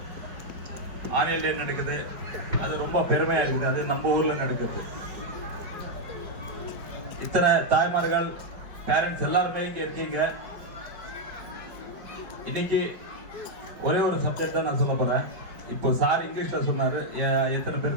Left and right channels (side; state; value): left; late; 5.0 ms